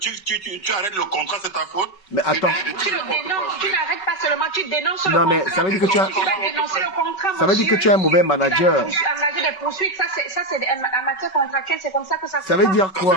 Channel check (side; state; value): right; late; 5.3 ms